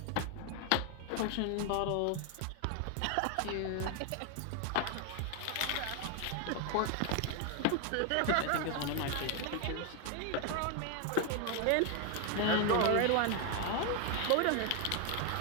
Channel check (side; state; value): both; different; correlation 0.00